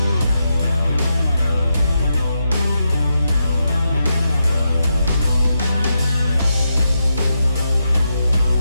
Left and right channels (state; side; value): inverted; both; correlation -0.86